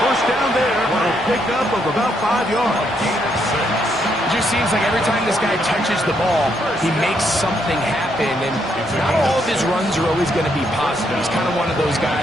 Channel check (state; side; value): normal; both; correlation 0.75